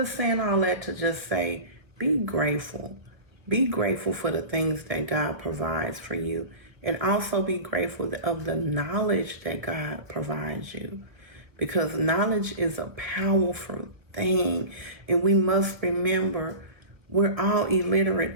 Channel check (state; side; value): late; left; 1.3 ms